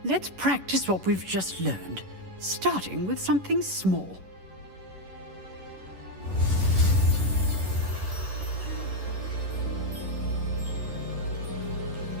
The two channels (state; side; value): late; left; 11 ms